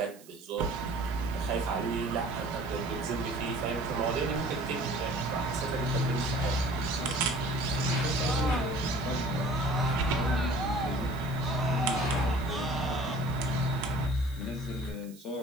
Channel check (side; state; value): right; noise; hiss, 22 dB below the sound